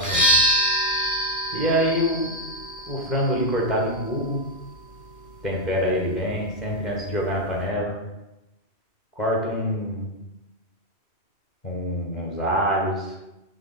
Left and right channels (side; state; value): right; late; 2.4 ms